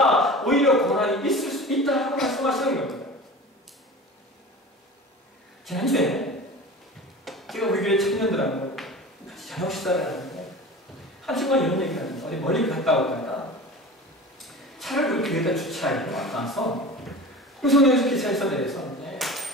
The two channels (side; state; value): both; normal; correlation 0.35